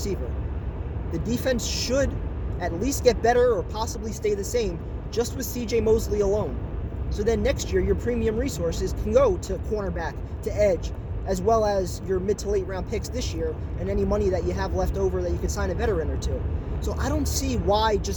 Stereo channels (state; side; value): identical; both; correlation 1.00